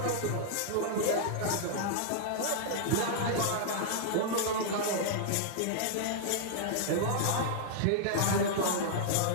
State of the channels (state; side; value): different; both; correlation -0.01